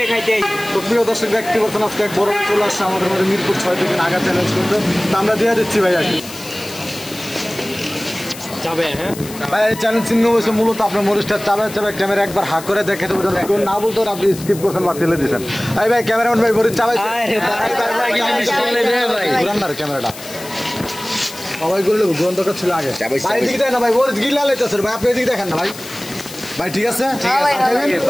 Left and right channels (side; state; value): left; noise; hiss, 14 dB below the sound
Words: খাইতে আইছি তো প্রিয় দর্শক ব্যক্তি বলছেন আজকে এক বড় চলে আসছে আমাদের মধ্যে মিরপুর 6 থেকে নাগা চ্যালেঞ্জ করতে তো আমরা দিয়ে দিচ্ছি ভাই আর যাবে হ্যাঁ ভাই এই চ্যালেঞ্জ চিহ্ন হয়েছে মূলত আপনার মরিচটা চাবে চাবে ক্যামেরা একবার হাক করে দেখে দেবো কেউ না বলতো আপনি স্কিপ করছেন বা ফেলে দিয়েছেন এই ভাই ক্যামেরাম্যান ভাই মরিচ চাবাইছে ক্যামেরাটা সবাই বললো গ্রন্থটা ছিল আগে ভাই এদিকে দেখেন না ভাই ওর গিলা লাইতেছে ভাই আপনি এদিকে দেখেন না ভাই ভাই ঠিক আছে আর